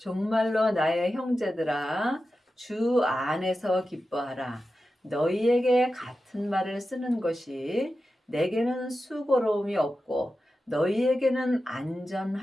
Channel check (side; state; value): both; normal; correlation 0.92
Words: 정말로 나의 형제들아, 주 안에서 기뻐하라. 너희에게 같은 말을 쓰는 것이 내게는 수고로움이 없고 너희에게는